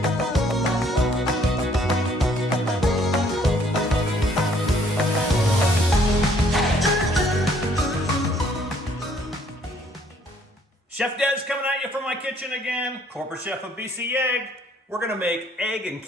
Chef Des coming at you from my kitchen again. Corporate chef of BC Egg. We're gonna make egg and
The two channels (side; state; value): both; normal; correlation 0.63